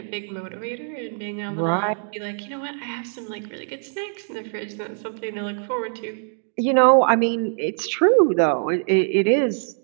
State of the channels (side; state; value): left; silent; digital silence